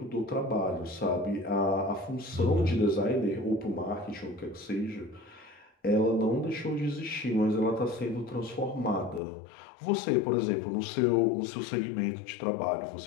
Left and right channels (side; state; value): right; drops out; at 9.2 s